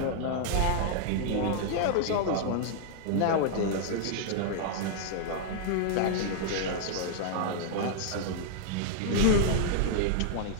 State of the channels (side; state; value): both; different; correlation -0.01